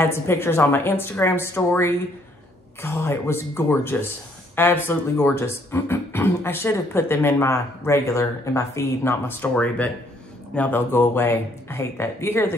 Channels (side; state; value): both; normal; correlation 0.66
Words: some pictures on my Instagram story. God, it was gorgeous. Absolutely gorgeous. I should have put them in my feed, not my story, but now they'll go away. I hate that. You